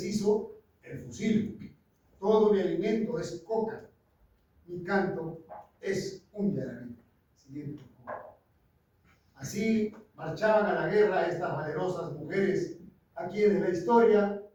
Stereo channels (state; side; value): identical; both; correlation 1.00